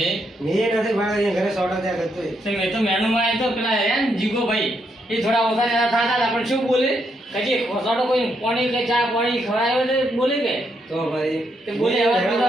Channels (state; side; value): normal; both; correlation 0.78